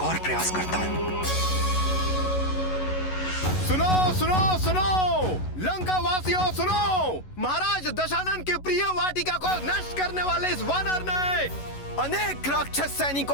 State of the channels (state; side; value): late; right; 11 ms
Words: और प्रयास करता हूँ। सुनो सुनो सुनो, लंका वासियों सुनो, महाराज दशानन की प्रिय वाटिका को नष्ट करने वाले इस वानर ने अनेक राक्षस